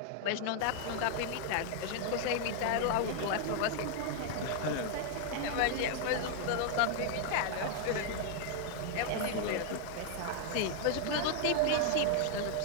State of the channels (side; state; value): both; different; correlation 0.00